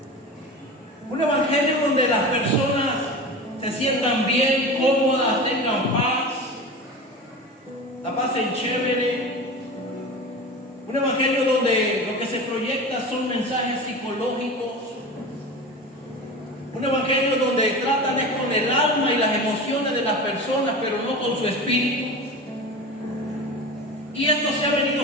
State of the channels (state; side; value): normal; both; correlation 0.31